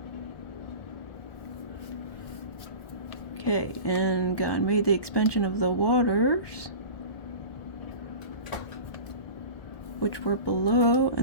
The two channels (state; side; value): late; right; 1.2 ms